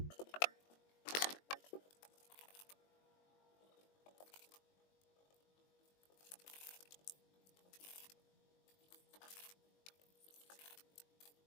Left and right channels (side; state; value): right; late; 21 ms